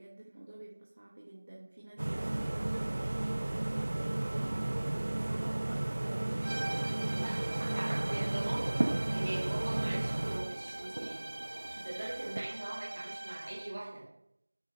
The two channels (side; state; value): both; inverted; correlation -1.00